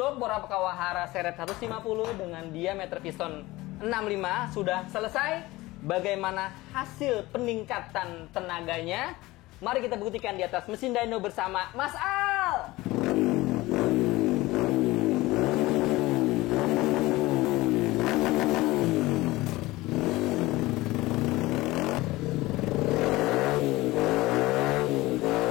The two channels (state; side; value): quieter; right; 19.4 dB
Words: bor Kawahara seret 150 dengan diameter piston 65 sudah selesai. Bagaimana hasil peningkatan tenaganya? Mari kita buktikan di atas mesin dyno bersama Mas Al.